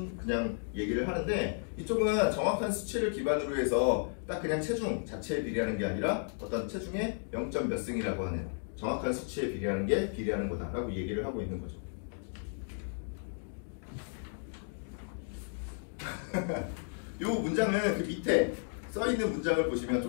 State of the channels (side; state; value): right; silent; 55 dB below the other